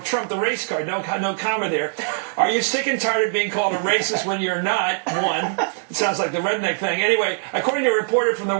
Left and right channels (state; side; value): silent; left; 56 dB below the other